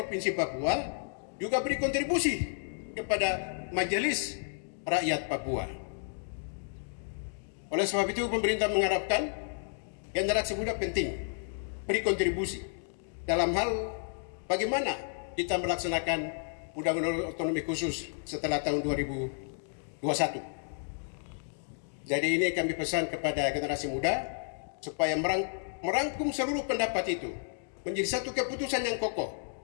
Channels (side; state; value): right; silent; digital silence